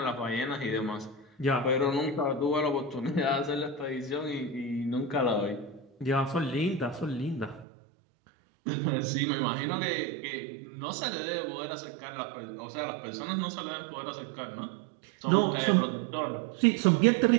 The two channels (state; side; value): drops out; left; at 7.7 s